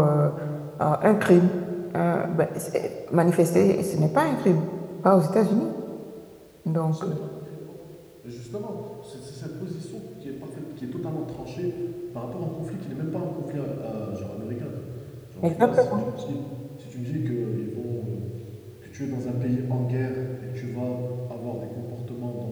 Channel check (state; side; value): identical; both; correlation 1.00